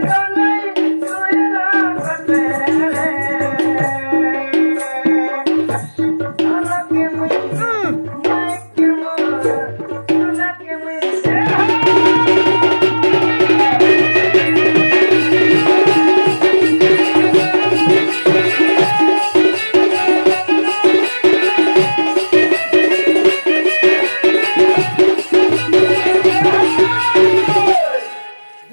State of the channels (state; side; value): inverted; both; correlation -1.00